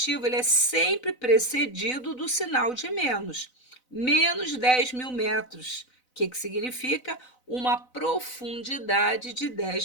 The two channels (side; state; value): right; late; 4.0 ms